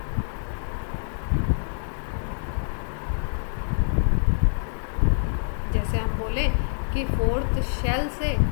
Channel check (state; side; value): silent; right; digital silence